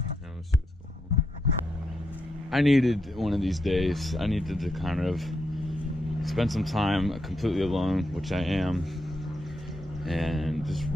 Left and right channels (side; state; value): both; normal; correlation 0.82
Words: let's see what's going on. I needed one of these days. I needed to kind of spend some time completely alone, which I am, and just